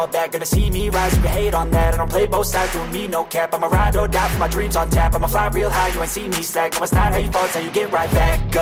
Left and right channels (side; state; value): both; identical; correlation 1.00